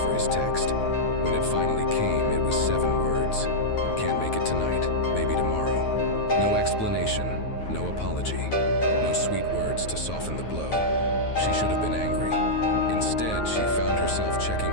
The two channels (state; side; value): late; right; 9.3 ms